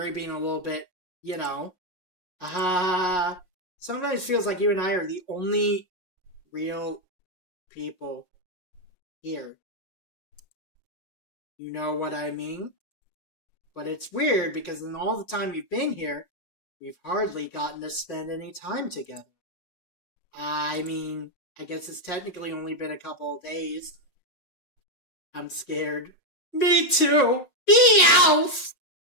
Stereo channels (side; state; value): right; late; 5.5 ms